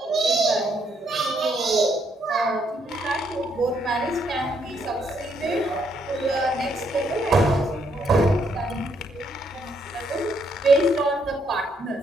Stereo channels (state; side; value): normal; both; correlation 0.73